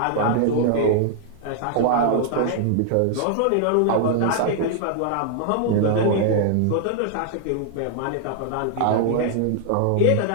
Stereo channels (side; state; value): both; different; correlation 0.00